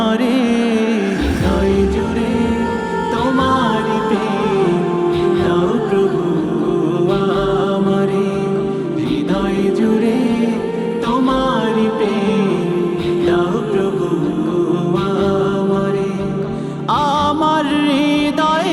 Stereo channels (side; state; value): both; identical; correlation 1.00